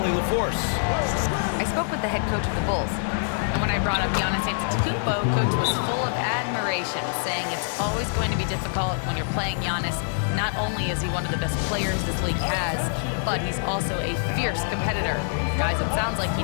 LaForce. I spoke with the head coach of the Bulls. And when I brought up Giannis Antetokounmpo, coach was full of admiration, saying it's always going to be difficult when you're playing Giannis. Not only is he one of the best players this league has, but he's also a fierce competitor. Guys, it sounds like he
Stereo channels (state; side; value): silent; right; 62 dB below the other